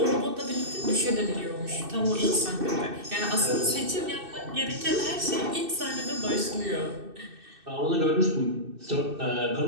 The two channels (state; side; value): late; left; 2.6 ms